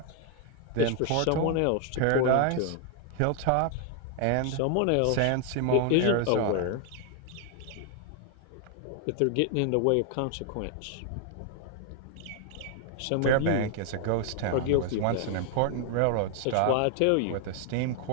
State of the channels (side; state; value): both; different; correlation 0.00